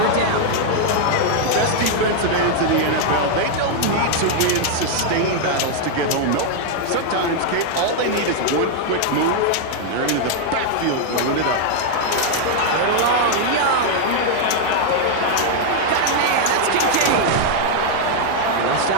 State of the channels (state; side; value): different; both; correlation 0.00